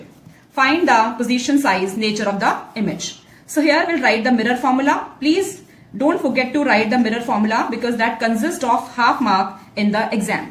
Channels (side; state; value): both; identical; correlation 1.00